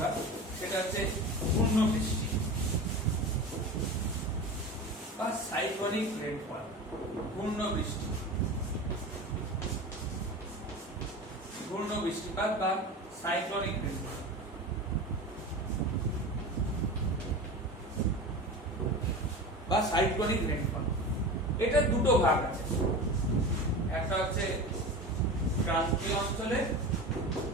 সেটা হচ্ছে পূর্ণ বৃষ্টি বা সাইক্লোনিক রেনফল। পূর্ণ বৃষ্টি, পূর্ণ বৃষ্টিপাত বা সাইক্লোনিক রেনফল। বা সাইক্লোনিক রেনফল, এটা দুটো ভাগ আছে। একটা হচ্ছে ক্রান্তীয় অঞ্চলে,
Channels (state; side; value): normal; both; correlation 0.30